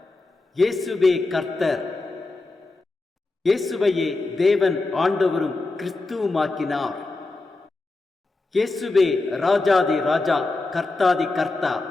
இயேசுவே கர்த்தர். இயேசுவையே தேவன் ஆண்டவரும் கிறிஸ்துவுமாக்கினார். இயேசுவே ராஜாதி ராஜா, கர்த்தாதி கர்த்தா.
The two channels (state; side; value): quieter; right; 3.3 dB